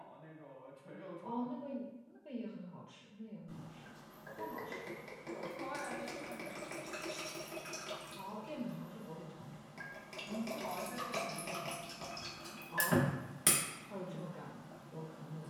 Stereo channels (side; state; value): both; identical; correlation 1.00